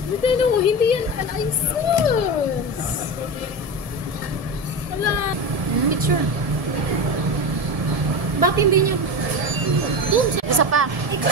Hindi mo, hindi yan. Ay, sus! Wala. Picture. Bakit hindi niyo? Isa pa. Ikaw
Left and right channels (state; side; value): late; left; 1.7 ms